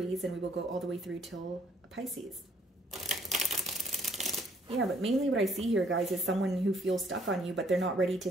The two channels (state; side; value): normal; both; correlation 0.64